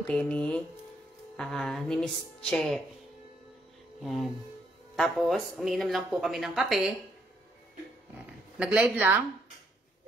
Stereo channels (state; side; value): normal; both; correlation 0.72